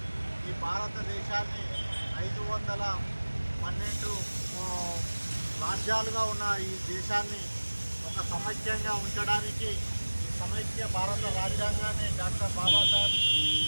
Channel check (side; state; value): both; inverted; correlation -1.00